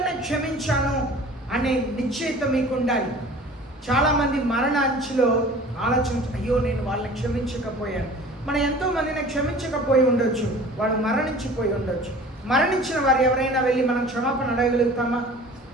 క్షమించాను అనే నిశ్చయిత మీకు ఉండాలి. చాలామంది మరణ అంచులో అయ్యో నేను వాళ్ళని క్షమించకపోయాను. మనం ఎంతోమందిని క్షమించకపోయి ఉండొచ్చు, వాడు మరణించిపోయి ఉండొచ్చు. మరణించిన వారు ఎవరైనా వెళ్ళి మనం క్షమాపణ అడగలుగుతామా?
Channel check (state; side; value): normal; both; correlation 0.44